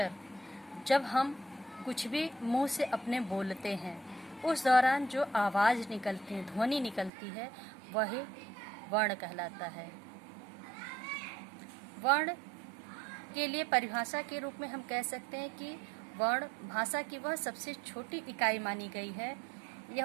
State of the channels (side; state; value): left; drops out; at 7.1 s